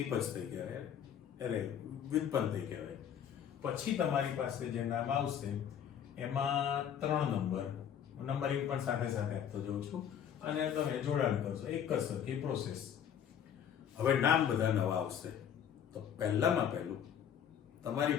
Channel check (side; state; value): right; quieter; 8.8 dB